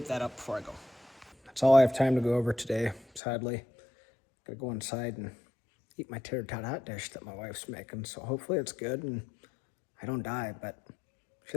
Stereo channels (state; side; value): drops out; right; at 3.2 s